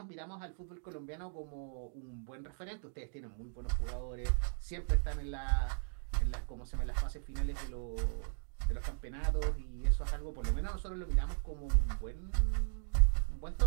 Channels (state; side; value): silent; left; digital silence